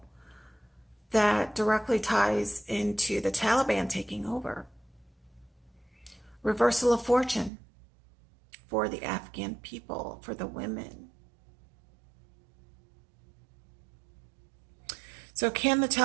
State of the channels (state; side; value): drops out; left; at 7.5 s